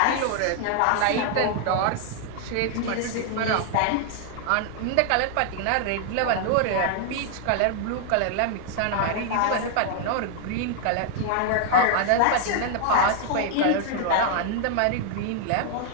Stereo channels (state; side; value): different; both; correlation 0.00